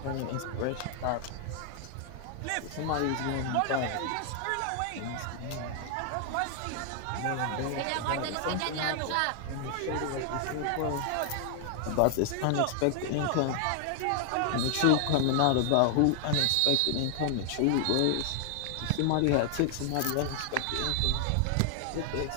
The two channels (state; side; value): different; both; correlation 0.00